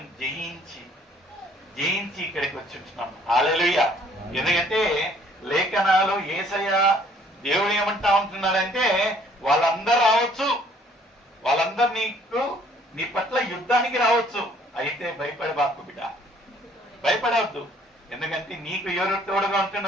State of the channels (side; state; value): both; normal; correlation 0.60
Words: జయించి ఇక్కడికి వచ్చి ఉంటున్నాం. హల్లెలూయా. ఎందుకంటే లేఖనాలు యేసయ్య దేవుడు ఏమంటా ఉంటున్నాడంటే, వాళ్ళందరూ రావచ్చు, వాళ్ళందరూ నీ పట్ల యుద్ధానికి రావచ్చు, అయితే భయపడబాకు బిడ్డ, భయపడవద్దు. ఎందుకంటే నీకు ఎవరు తోడుగా